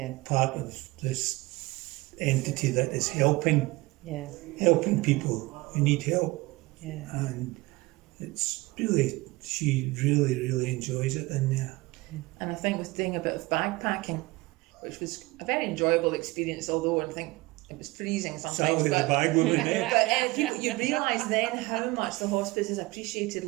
part of this entity that is helping people who need help. And it's really, she really enjoys it in there. And I think with doing a bit of bagpacking, which was a very enjoyable experience, although I think it was freezing sometimes. The bag woman but you realise then how much the hospice is appreciated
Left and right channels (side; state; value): left; quieter; 22.1 dB